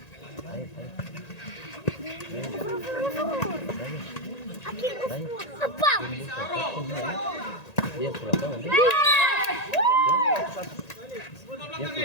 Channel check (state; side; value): late; right; 1.8 ms